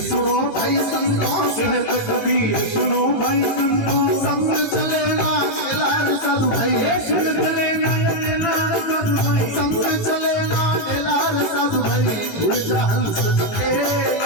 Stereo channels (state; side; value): late; right; 18 ms